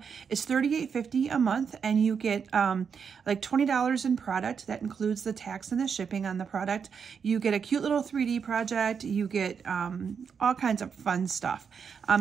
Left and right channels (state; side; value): quieter; left; 6.5 dB